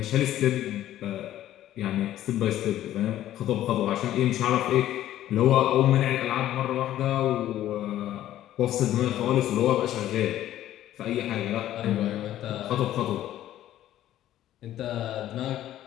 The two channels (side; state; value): right; quieter; 12.9 dB